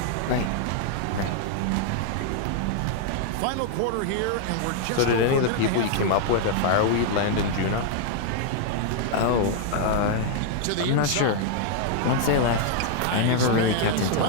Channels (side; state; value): both; different; correlation -0.01